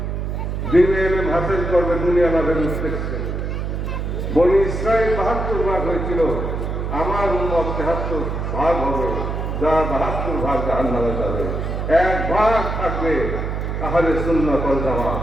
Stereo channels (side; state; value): right; noise; hum, 3 dB below the sound